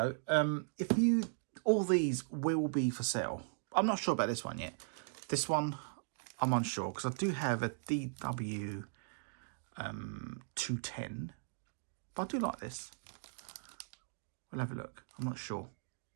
All these will be for sale. I'm not sure about this one yet. This one, I'm unsure because I do have a DW 210. But I do like this. We'll have a look. I'm not sure.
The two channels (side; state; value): left; silent; digital silence